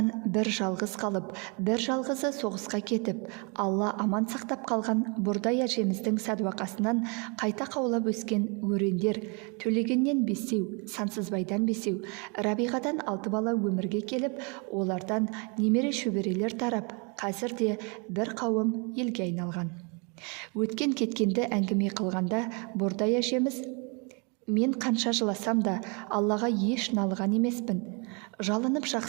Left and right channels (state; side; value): quieter; left; 33.4 dB